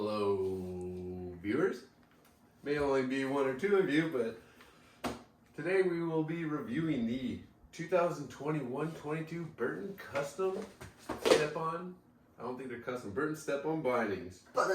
viewers. May only be one or two of you, but today we will be reviewing the 2021-22 Burton Custom Step-on. I don't think they're custom. Burton Step-on bindings.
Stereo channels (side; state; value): both; identical; correlation 1.00